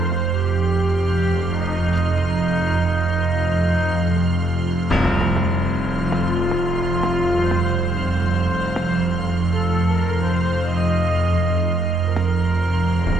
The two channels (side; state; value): both; normal; correlation 0.73